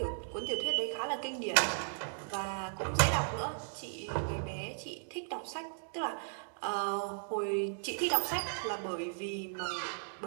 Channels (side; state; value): left; silent; digital silence